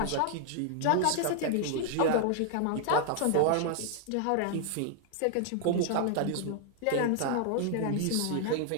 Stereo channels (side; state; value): both; different; correlation 0.00